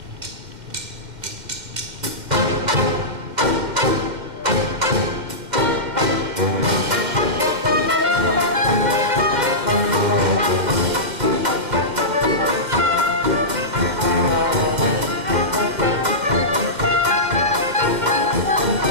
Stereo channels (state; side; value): late; left; 2.0 ms